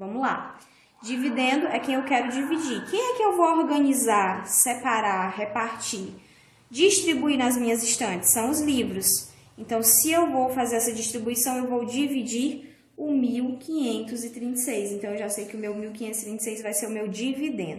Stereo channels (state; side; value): identical; both; correlation 1.00